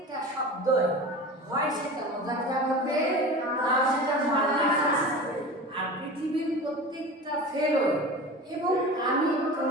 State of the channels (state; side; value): normal; both; correlation 0.33